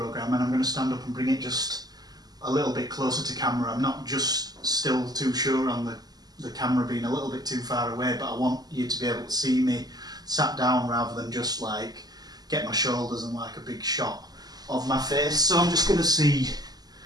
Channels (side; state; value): left; late; 0.19 ms